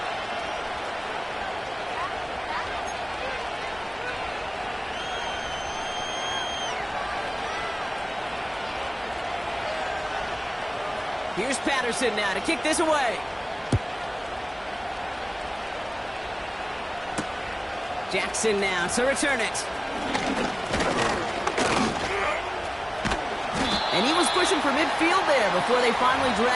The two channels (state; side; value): identical; both; correlation 1.00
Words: Here's Patterson now to kick this away. Jackson now to return it. And he was pushing for midfield there before they finally